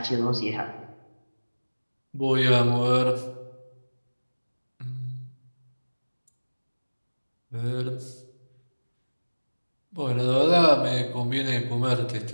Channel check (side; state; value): both; inverted; correlation -1.00